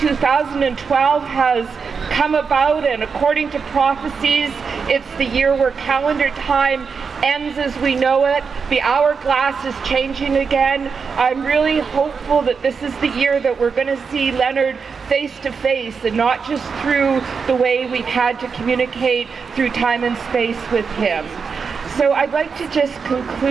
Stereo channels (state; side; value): quieter; left; 5.6 dB